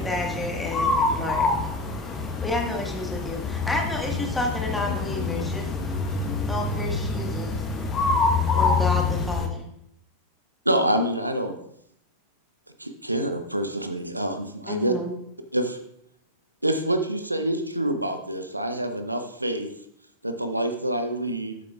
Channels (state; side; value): normal; both; correlation 0.02